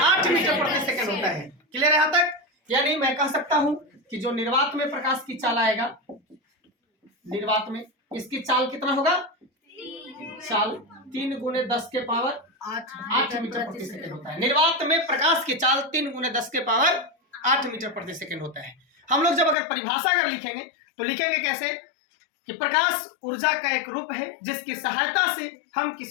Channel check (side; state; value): right; drops out; at 19.6 s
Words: मीटर प्रति सेकंड होता है। क्लियर है यहां तक? यानी मैं कह सकता हूं कि जो निर्वात में प्रकाश की चाल आएगा, निर्वात में इसकी चाल कितना होगा? चाल 3×10⁸ मीटर प्रति सेकंड होता है। निर्वात में प्रकाश की चाल 3×10⁸ मीटर प्रति सेकंड होता है। हम लोग जब अगर परिभाषा अगर लिखेंगे तो लिखेंगे कैसे कि प्रकाश ऊर्जा का एक रूप है जिसकी सहायता से हम